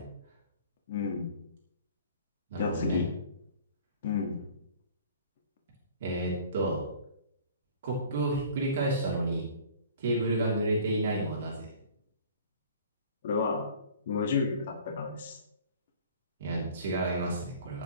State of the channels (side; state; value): both; inverted; correlation -0.47